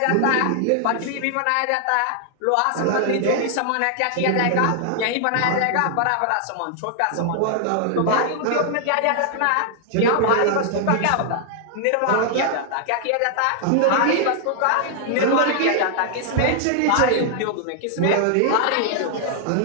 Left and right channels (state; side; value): different; both; correlation 0.00